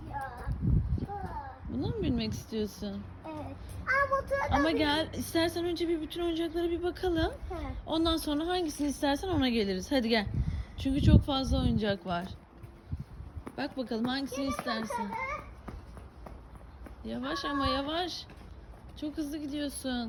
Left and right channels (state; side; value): identical; both; correlation 1.00